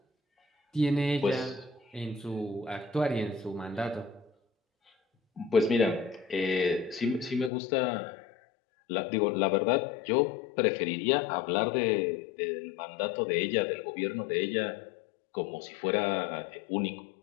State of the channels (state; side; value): drops out; right; at 7.5 s